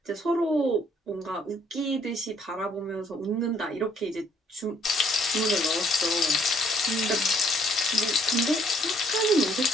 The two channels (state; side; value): normal; both; correlation 0.64